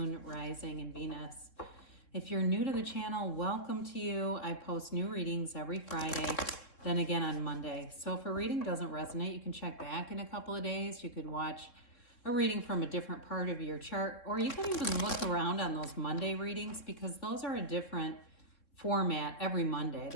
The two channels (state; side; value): late; right; 3.7 ms